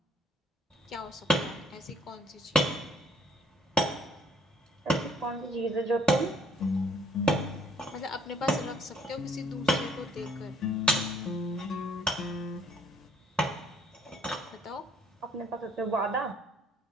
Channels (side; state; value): both; normal; correlation 0.61